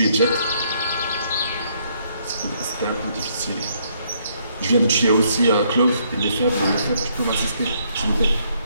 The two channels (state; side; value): inverted; both; correlation -0.70